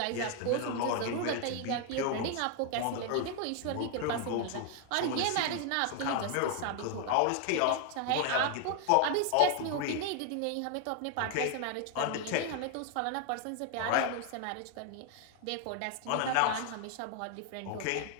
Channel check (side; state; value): both; different; correlation 0.00